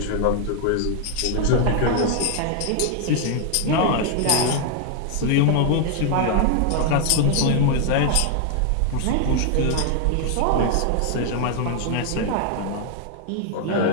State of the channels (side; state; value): both; different; correlation 0.00